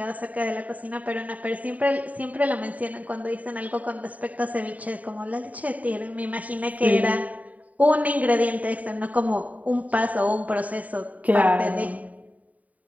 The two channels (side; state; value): left; late; 0.071 ms